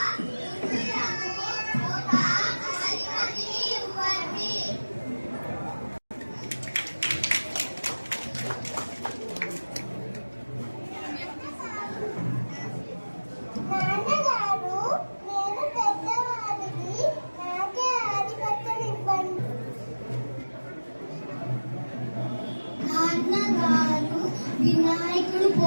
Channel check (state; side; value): inverted; both; correlation -1.00